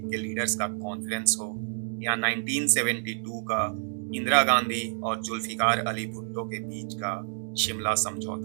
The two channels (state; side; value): silent; left; digital silence